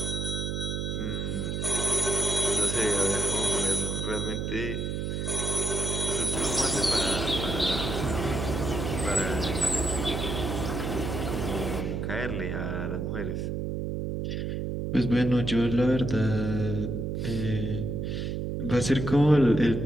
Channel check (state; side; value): noise; right; hum, 2 dB below the sound